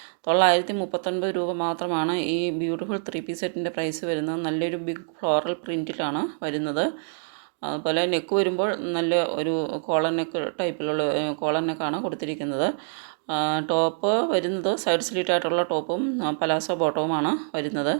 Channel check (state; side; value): silent; left; 61 dB below the other